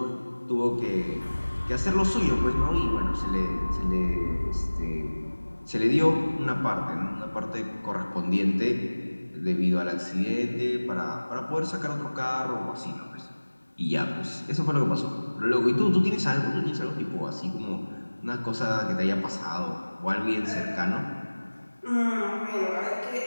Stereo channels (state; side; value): inverted; both; correlation -1.00